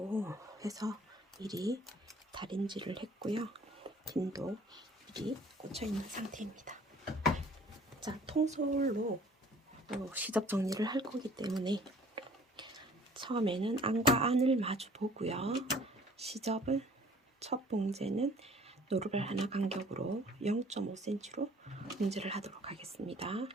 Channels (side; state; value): both; normal; correlation 0.53